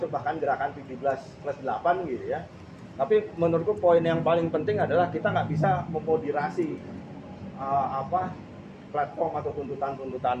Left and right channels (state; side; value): identical; both; correlation 1.00